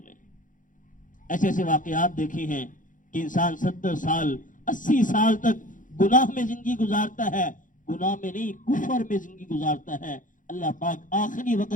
ऐसे ऐसे वाकयात देखे हैं कि इंसान 70 साल 80 साल तक गुनाह में जिंदगी गुजारता है, गुनाह में नहीं कुफर में जिंदगी गुजारता है। अल्लाह पाक आखिरी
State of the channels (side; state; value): right; late; 0.38 ms